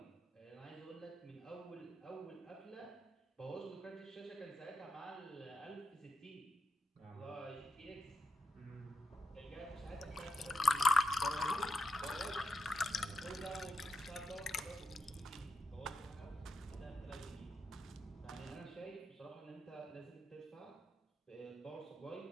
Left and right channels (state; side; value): normal; both; correlation 0.82